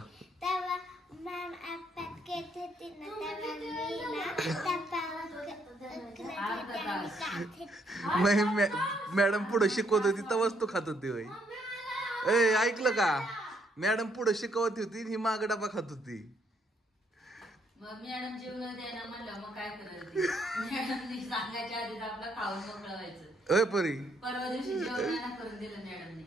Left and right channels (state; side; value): normal; both; correlation 0.71